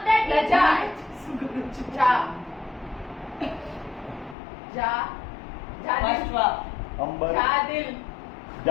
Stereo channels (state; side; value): drops out; right; at 4.4 s